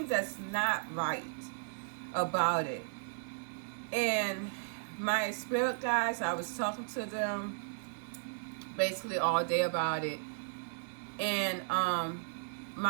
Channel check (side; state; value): left; silent; 54 dB below the other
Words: that's not right about it. And my spirit guides, I was talking to them basically all day about it. And